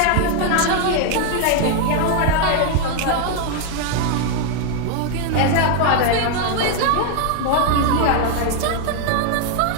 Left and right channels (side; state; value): both; different; correlation 0.01